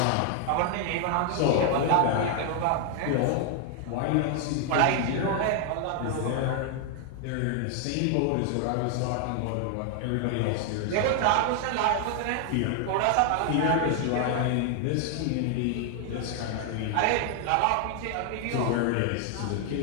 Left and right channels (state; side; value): different; both; correlation 0.00